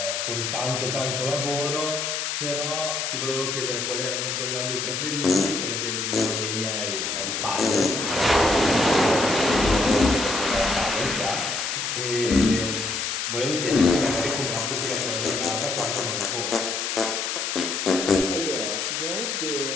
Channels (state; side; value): noise; left; hiss, 2 dB below the sound